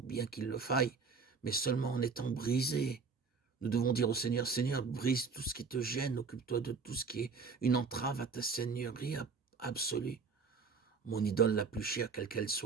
qu'il le faille, mais seulement en étant brisé. Nous devons dire au Seigneur, Seigneur, brise tout ce qui te gêne, occupe-toi de tout ce qui est une entrave à ta seigneurie absolue. Mon idole la plus chère, quelle qu'elle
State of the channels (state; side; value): quieter; left; 5.0 dB